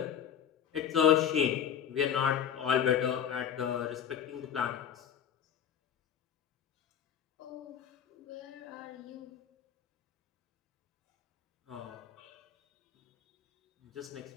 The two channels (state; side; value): quieter; right; 8.7 dB